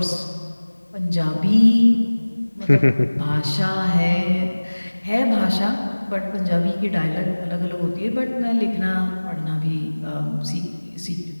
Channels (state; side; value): inverted; both; correlation -1.00